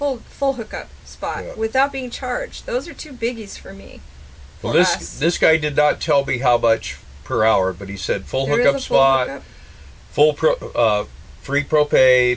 hookup spot without being charged. Those are 2 biggies for me. Well, this guy did not tell me how much per hour, but he said full hookup spot, free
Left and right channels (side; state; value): both; identical; correlation 1.00